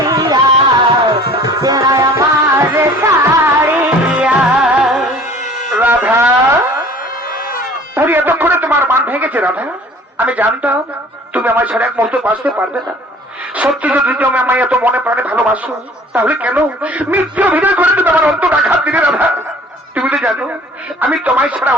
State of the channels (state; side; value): normal; both; correlation 0.49